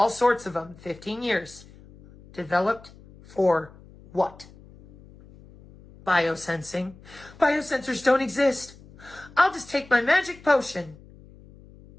sorts of them, 15 years. Developed for what? Biosensing. Biosensors don't exist. I'll just take my magic potion.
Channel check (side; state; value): left; noise; hum, 22 dB below the sound